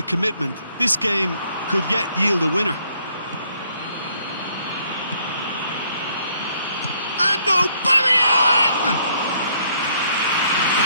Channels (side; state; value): both; inverted; correlation -0.67